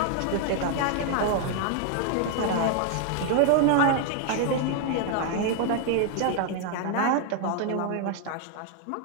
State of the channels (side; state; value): both; different; correlation 0.00